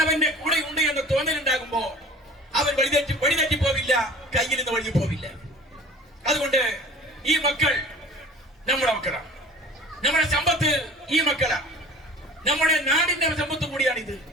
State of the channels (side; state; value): both; normal; correlation 0.44